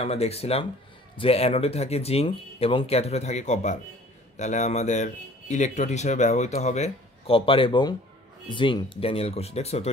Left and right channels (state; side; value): normal; both; correlation 0.51